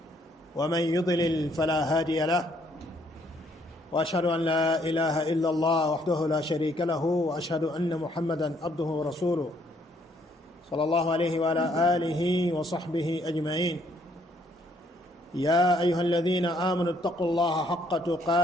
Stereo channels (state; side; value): normal; both; correlation 0.68